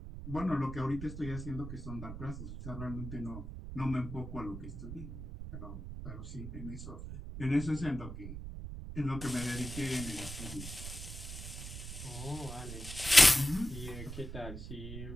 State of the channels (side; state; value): right; noise; rumble, 8 dB below the sound